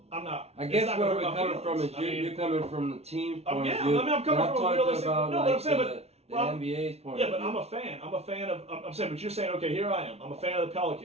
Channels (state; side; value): late; left; 0.31 ms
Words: not. I guess it's not where gonna we're hurt my coming from is feelings. you're coming from the team point yeah, of view. I mean, I'm coming and from a talking realistic. about, No, like, but I'm saying, the NBA's point yeah, of but view. I'm a fan. I'm a fan of. I'm saying, but you're saying, okay, here I am. I'm a fan of the